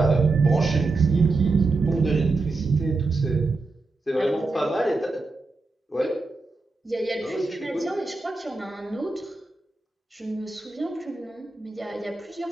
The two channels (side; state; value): left; quieter; 3.5 dB